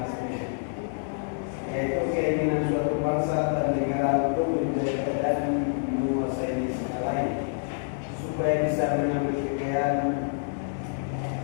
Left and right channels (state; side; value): silent; right; digital silence